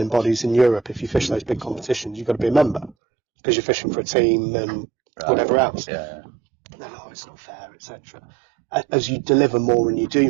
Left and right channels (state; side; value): drops out; left; at 3.0 s